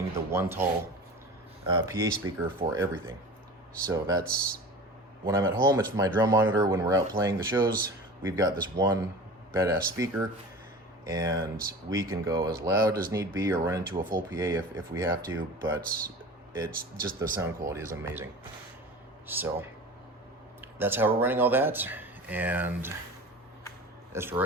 the one tall PA speaker for everything. So that's, when I'm at home, it's my drum monitor. When we're out playing the shows, we've got this one badass speaker, and we can go as loud as need be or run into a full PA if we have to, but it's just, the sound quality is amazing. So that's how we're running all that. And as for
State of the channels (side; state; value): both; normal; correlation 0.36